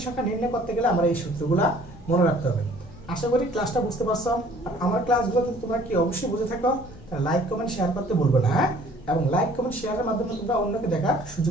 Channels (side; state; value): left; noise; rumble, 19 dB below the sound